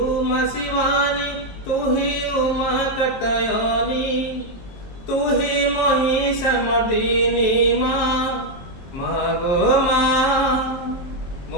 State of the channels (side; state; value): right; late; 23 ms